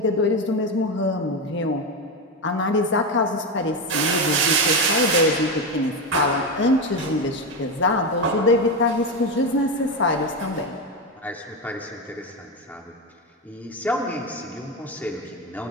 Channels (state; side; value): normal; both; correlation 0.14